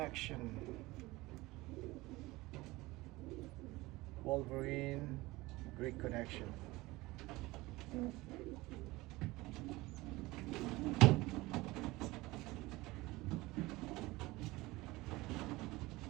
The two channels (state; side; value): quieter; left; 20.5 dB